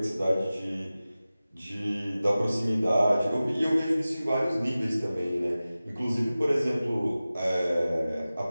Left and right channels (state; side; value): inverted; both; correlation -0.97